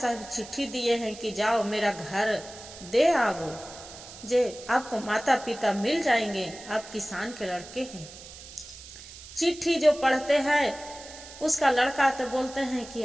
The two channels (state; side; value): noise; right; hiss, 16 dB below the sound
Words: चिट्ठी दिए हैं कि जाओ मेरा घर दे आओ, जे आपको माता पिता मिल जाएंगे, आप किसान के लड़के हैं। चिट्ठी जो पढ़ते हैं उसका लड़का तो बोलते हैं कि